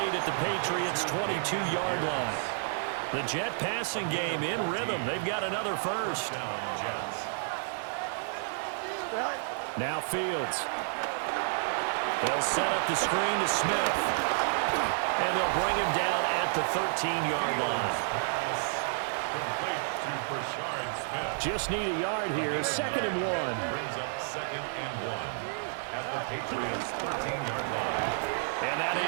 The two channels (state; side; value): silent; left; digital silence